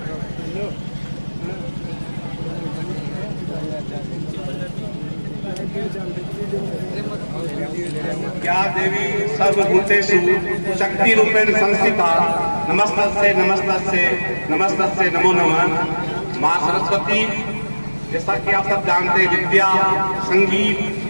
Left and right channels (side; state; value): both; inverted; correlation -1.00